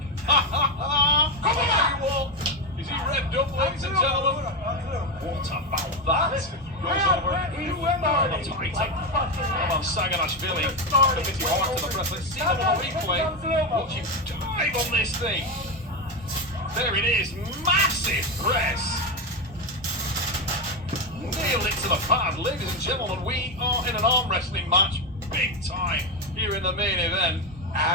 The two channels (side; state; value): both; normal; correlation 0.12